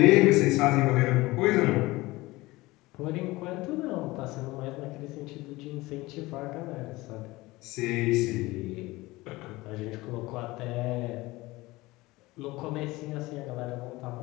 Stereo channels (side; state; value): right; quieter; 20.4 dB